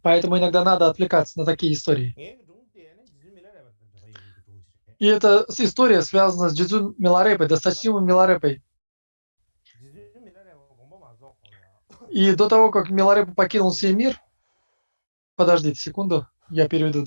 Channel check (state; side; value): inverted; both; correlation -1.00